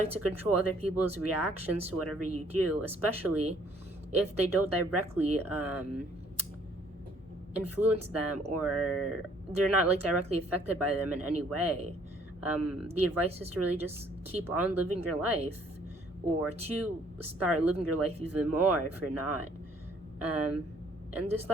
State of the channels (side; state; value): both; normal; correlation 0.62